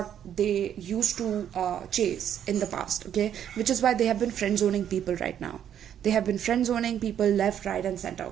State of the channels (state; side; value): quieter; left; 9.7 dB